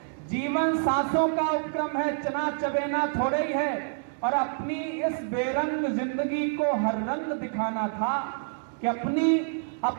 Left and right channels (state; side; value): silent; left; 60 dB below the other